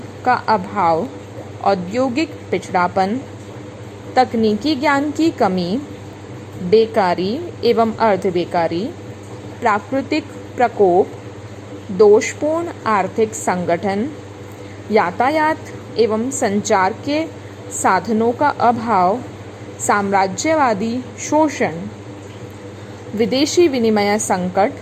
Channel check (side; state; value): both; identical; correlation 1.00